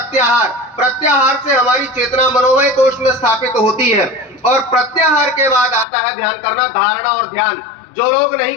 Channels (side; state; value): right; drops out; at 5.9 s